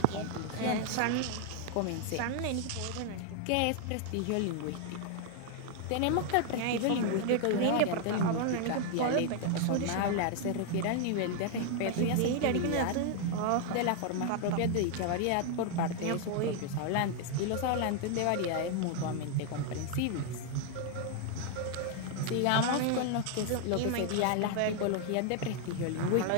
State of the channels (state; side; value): different; both; correlation 0.00